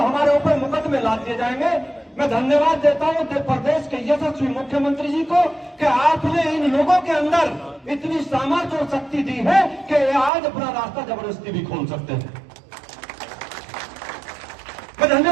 हमारे ऊपर मुकदमे लाद दिए जाएंगे। मैं धन्यवाद देता हूं उत्तर प्रदेश के यशस्वी मुख्यमंत्री जी को कि आपने इन लोगों के अंदर इतनी सामर्थ्य और शक्ति दी है कि आज अपना रास्ता जबरदस्ती भी खोल सकते हैं। मैं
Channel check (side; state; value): left; drops out; at 10.3 s